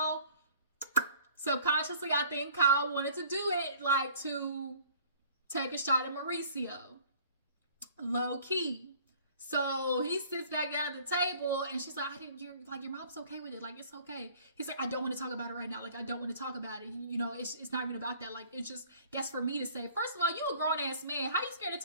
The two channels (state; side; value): inverted; both; correlation -0.53